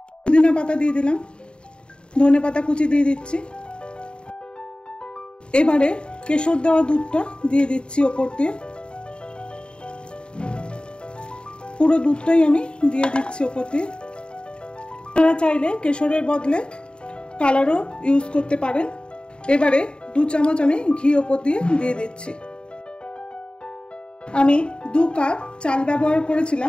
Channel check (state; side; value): late; right; 0.052 ms